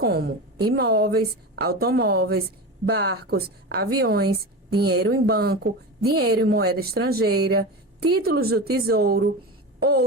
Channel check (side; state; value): both; normal; correlation 0.25